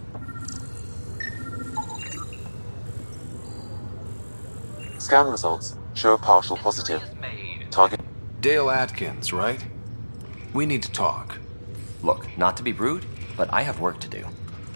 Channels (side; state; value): both; inverted; correlation -1.00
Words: Scan results show a partial positive. Target. Dale Atkins, right? We need to talk. Look, not to be rude, but I have work to do.